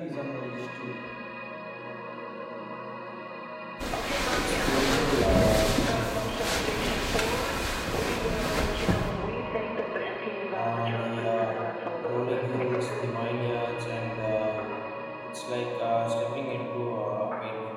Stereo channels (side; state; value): both; identical; correlation 1.00